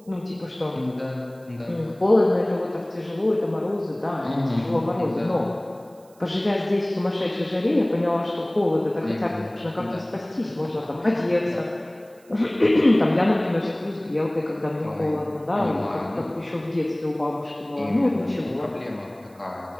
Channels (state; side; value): noise; right; hiss, 30 dB below the sound